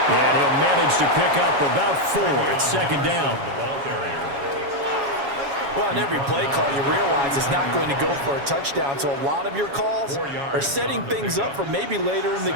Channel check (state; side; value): late; left; 7.2 ms